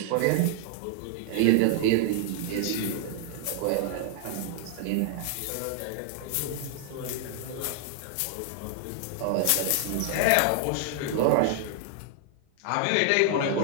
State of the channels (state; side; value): different; both; correlation 0.00